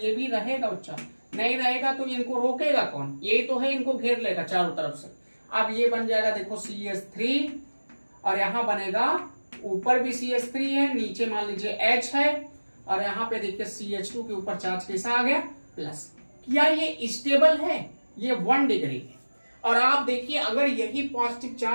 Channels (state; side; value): inverted; both; correlation -1.00